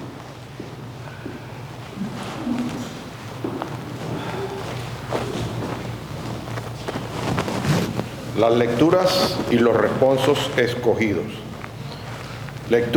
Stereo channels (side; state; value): both; identical; correlation 1.00